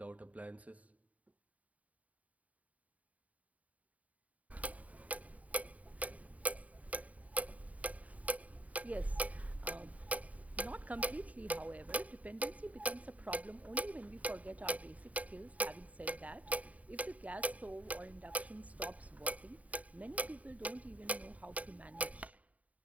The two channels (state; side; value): late; left; 0.070 ms